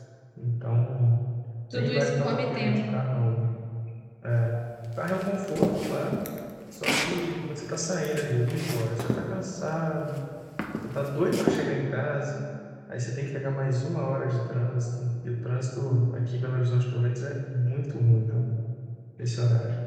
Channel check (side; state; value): both; identical; correlation 1.00